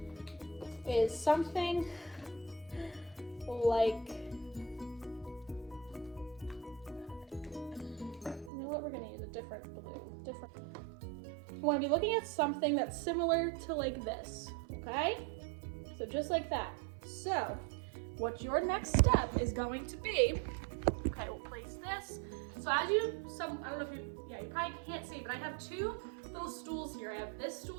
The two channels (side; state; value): left; drops out; at 8.5 s